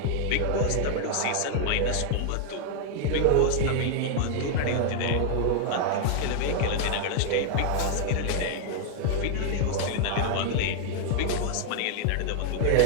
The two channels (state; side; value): different; both; correlation 0.00